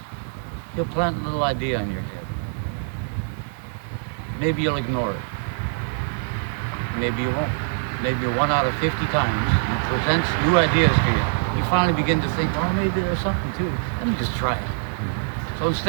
he'll plant a little idea in your head. Maybe you'll ignore it. Maybe you won't. Maybe 1 out of 50 times he presents new ideas to you. You finally begin to think, oh, maybe there's something to it. Let me just try it. So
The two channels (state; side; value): silent; left; digital silence